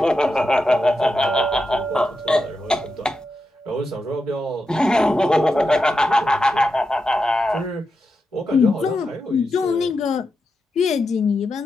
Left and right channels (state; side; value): normal; both; correlation 0.88